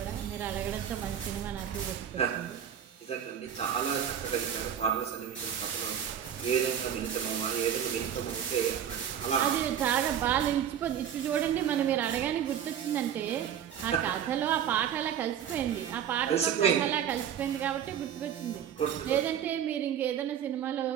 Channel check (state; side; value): quieter; left; 9.2 dB